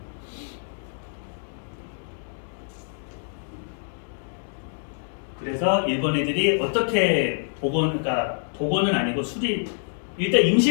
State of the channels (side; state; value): right; silent; digital silence